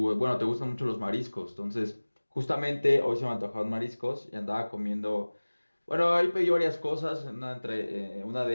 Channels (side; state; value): both; inverted; correlation -1.00